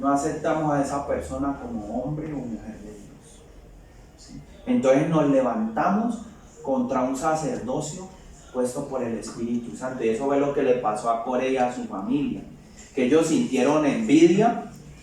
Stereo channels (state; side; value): identical; both; correlation 1.00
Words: aceptamos a esa persona como hombre o mujer de Dios, ¿sí? Entonces nos levantamos contra un sacerdocio puesto por el Espíritu Santo. Y eso fue lo que le pasó a Coré y a su familia, que ellos sintieron envidia